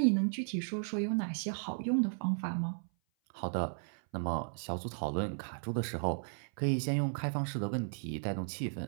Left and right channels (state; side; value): silent; left; 54 dB below the other